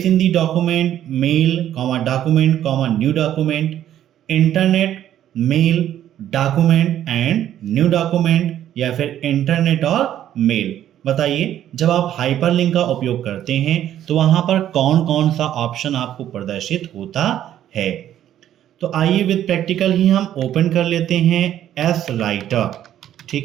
in the document, mail, document, new document. Internet, mail, document and new document या फिर internet और mail. बताइए, जब आप hyperlink का उपयोग करते हैं तो वहां पर कौन कौन सा ऑप्शन आपको प्रदर्शित होता है? तो आइए विद प्रैक्टिकल ही हम ओपन कर लेते हैं एस राइटर।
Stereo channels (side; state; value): left; quieter; 11.4 dB